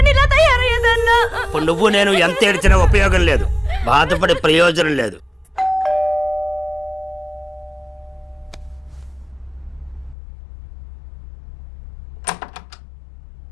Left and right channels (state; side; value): drops out; right; at 10.2 s